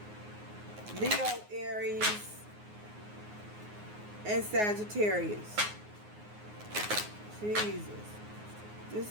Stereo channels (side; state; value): left; late; 9.5 ms